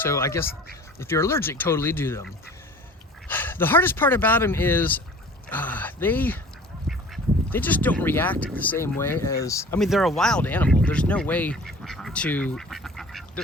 So I guess if you're allergic, totally do them. The hardest part about them is they just don't react the same way as, I mean, they're a wild animal. There's no way to,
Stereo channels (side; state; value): both; normal; correlation 0.45